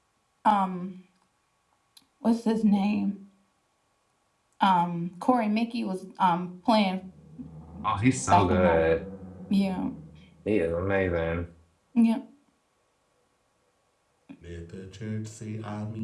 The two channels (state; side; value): identical; both; correlation 1.00